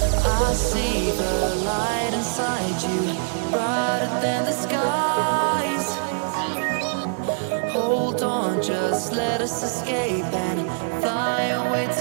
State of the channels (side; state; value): left; silent; 60 dB below the other